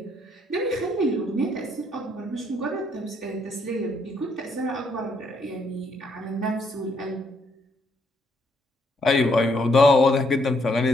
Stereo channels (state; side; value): normal; both; correlation 0.71